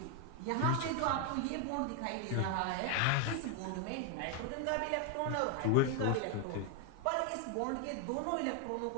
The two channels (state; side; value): different; both; correlation 0.01